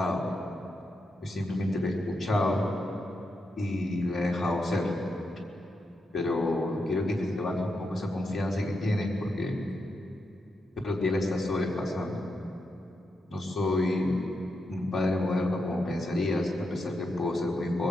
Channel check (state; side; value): normal; both; correlation 0.84